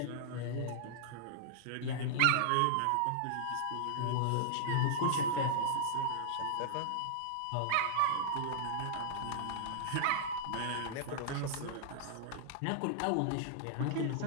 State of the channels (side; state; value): both; different; correlation -0.01